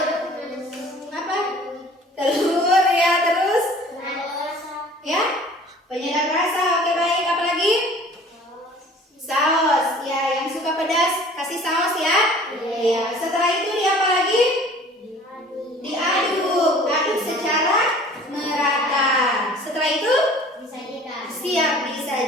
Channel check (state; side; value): normal; both; correlation 0.48